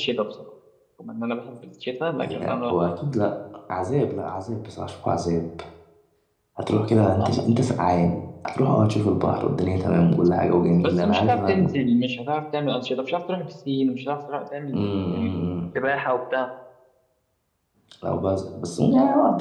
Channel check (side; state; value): both; identical; correlation 1.00